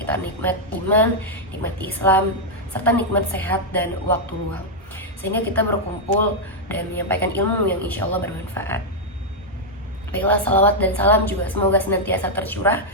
nikmat iman, nikmat Islam, serta nikmat sehat dan waktu luang, sehingga kita berkumpul dan menyampaikan ilmu yang insya Allah bermanfaat. Baiklah, salawat dan salam juga semoga senantiasa tercurah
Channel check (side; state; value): both; normal; correlation -0.02